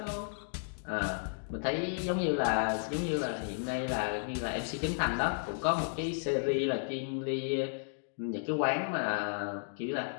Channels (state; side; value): silent; right; digital silence